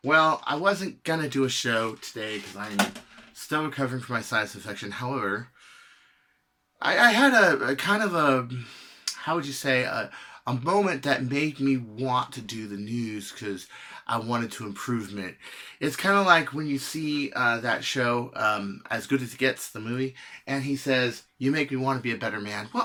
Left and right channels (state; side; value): identical; both; correlation 1.00